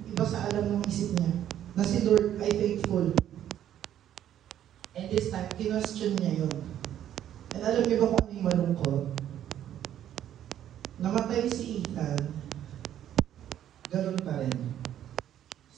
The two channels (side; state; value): left; quieter; 11.0 dB